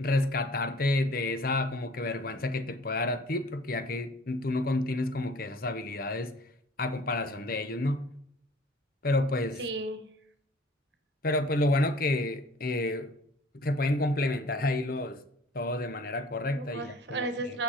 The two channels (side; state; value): both; normal; correlation 0.50